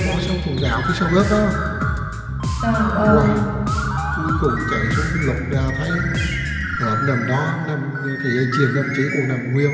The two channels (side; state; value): both; identical; correlation 1.00